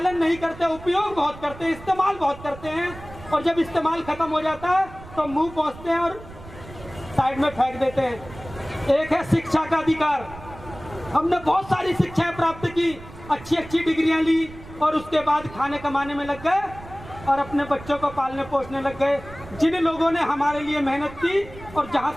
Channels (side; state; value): right; noise; rumble, 16 dB below the sound